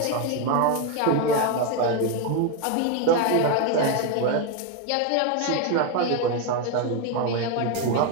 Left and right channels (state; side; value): different; both; correlation 0.02